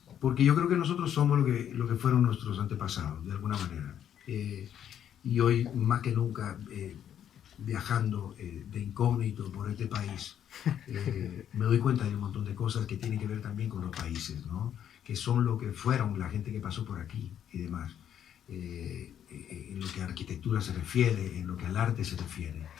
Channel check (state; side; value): quieter; right; 9.7 dB